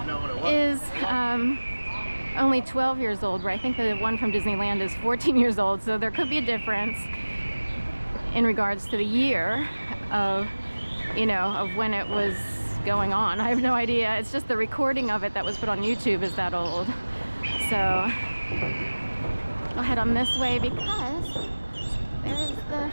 is only 12 years old, where I think the one from Disneyland is 14 years old, so there could be a difference in regards to the year of when it was going on. I have no idea. It's just the recording of it that was put on YouTube is that old. So I'll head on this way because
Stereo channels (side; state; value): both; inverted; correlation -1.00